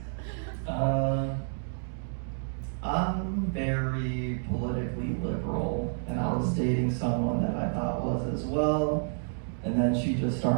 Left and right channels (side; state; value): left; silent; digital silence